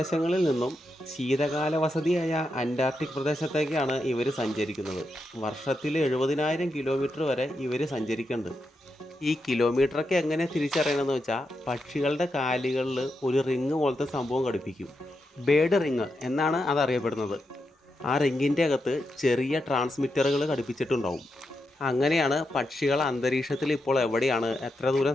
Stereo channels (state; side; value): normal; both; correlation 0.85